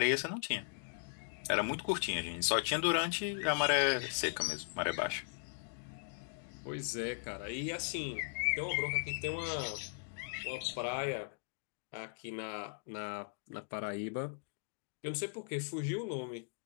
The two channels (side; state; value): right; silent; digital silence